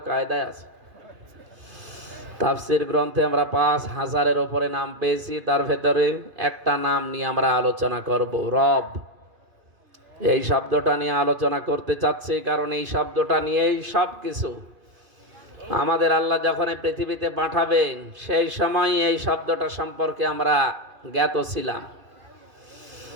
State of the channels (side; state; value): left; late; 2.5 ms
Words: কায়দায় আছে। তাফসীর গ্রন্থে আমরা ৫,০০০-এর উপরে নাম পেয়েছি, তার ভেতরে একটা নাম নিয়ে আমরা আলোচনা করব, রব। এই শব্দটা নিয়ে আলোচনা করতে চাচ্ছি কারণ এই শব্দটা নিয়েই সব কিছু। আমাদের আল্লাহ যখন এই পৃথিবীতে পাঠাবেন সেই সময় এই শব্দটা সম্পর্কে আমরা জ্ঞাত ছিলাম।